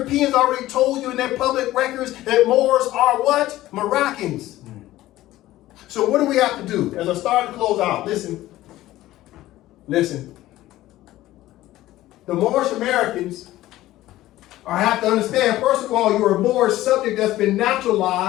already told you in their public records that Moors are what? Moroccans. So what do we have to do? As I start to close out, listen. The Moorish Americans have to understand, first of all, you're a Moorish subject that's been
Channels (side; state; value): right; quieter; 15.6 dB